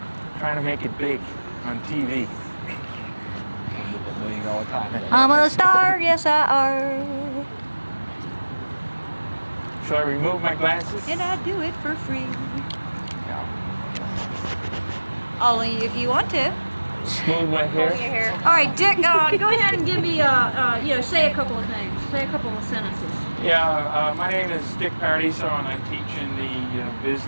Trying to make it big on TV. $1 million contract. I'm a star, yes I are. Shall I remove my glasses? And I do it for free. Yeah. Only if you want to. Smooth my hair. All right, Dick, go ahead and give me, say a couple of things. Say a couple of sentences. Yeah, my name is Dick Paradiso, and I teach in the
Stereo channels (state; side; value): inverted; both; correlation -1.00